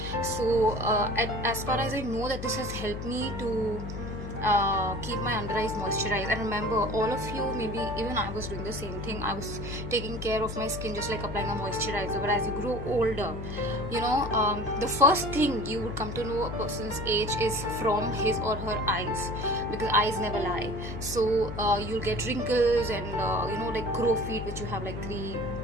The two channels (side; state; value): left; noise; hum, 7 dB below the sound